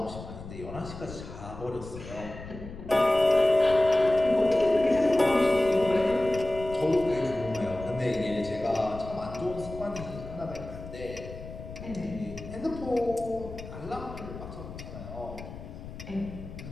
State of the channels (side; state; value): left; noise; rumble, 12 dB below the sound